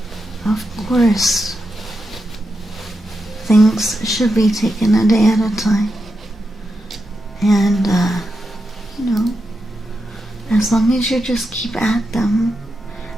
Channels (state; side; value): normal; both; correlation 0.87